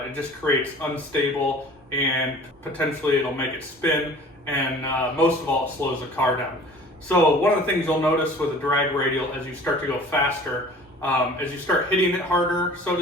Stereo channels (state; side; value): normal; both; correlation 0.46